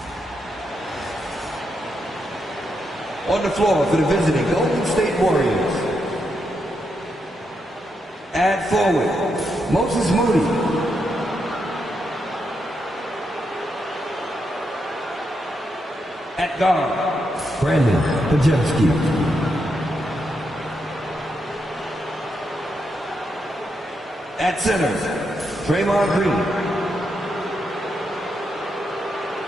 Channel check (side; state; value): both; normal; correlation 0.82